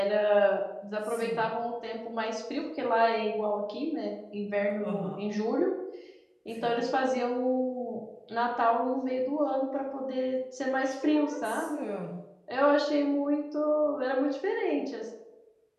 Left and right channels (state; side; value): identical; both; correlation 1.00